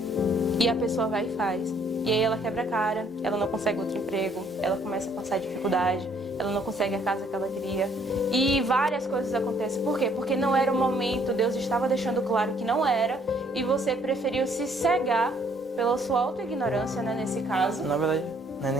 E a pessoa vai e faz. E aí ela quebra a cara, ela não consegue outro emprego, ela começa a passar dificuldade, ela não consegue a casa que ela queria. E várias coisas acontecem. Por quê? Porque não era o momento, Deus estava deixando claro que não era, e você preferiu se cegar pela sua autoignorância, né, nesse caso. Na verdade, não é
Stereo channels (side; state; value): both; normal; correlation 0.64